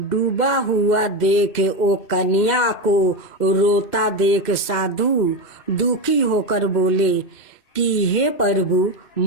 हुआ देख वो कन्या को रोता देख साधु दुखी होकर बोले कि हे प्रभु,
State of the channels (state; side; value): late; right; 2.6 ms